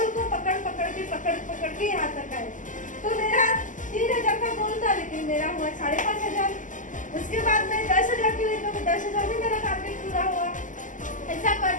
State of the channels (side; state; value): right; late; 0.37 ms